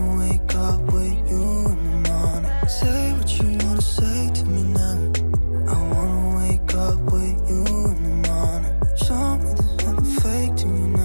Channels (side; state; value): both; inverted; correlation -1.00